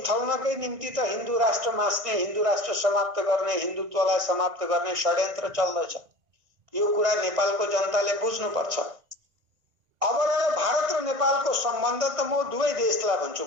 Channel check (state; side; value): late; left; 1.9 ms